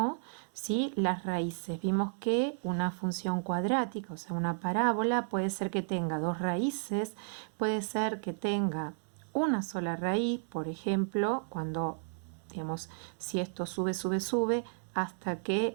¿sí?, las raíces. Vimos que una función cuadrática, o sea, una parábola, puede ser que tenga dos raíces, puede ser que tenga una sola raíz, por ejemplo, cuando, digamos, si esto sube, sube, sube, hasta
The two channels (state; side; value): silent; left; digital silence